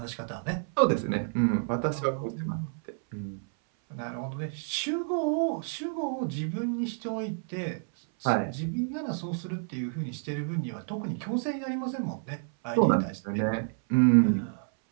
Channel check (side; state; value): left; silent; 58 dB below the other